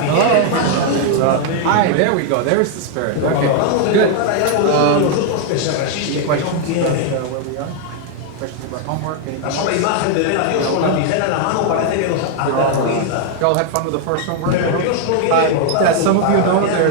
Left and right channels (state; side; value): different; both; correlation 0.00